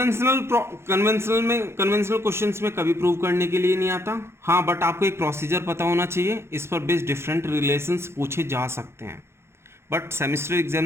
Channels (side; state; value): left; late; 0.12 ms